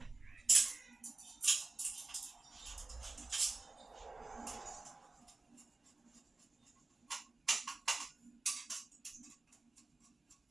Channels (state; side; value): quieter; left; 3.4 dB